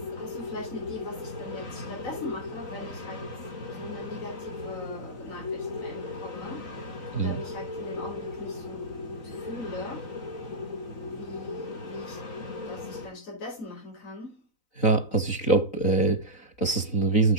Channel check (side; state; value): right; late; 4.0 ms